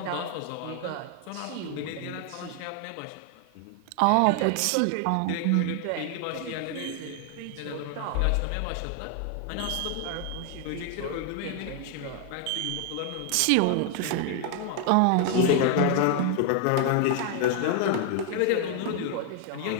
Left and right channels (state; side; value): different; both; correlation 0.00